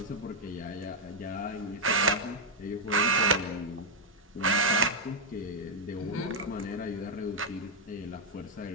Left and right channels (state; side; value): normal; both; correlation 0.00